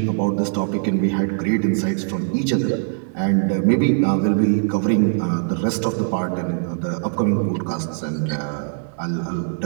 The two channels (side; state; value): left; silent; 63 dB below the other